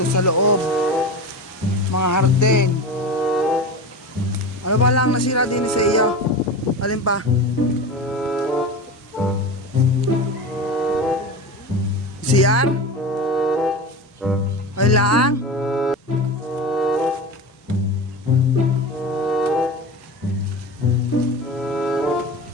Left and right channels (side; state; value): both; normal; correlation 0.28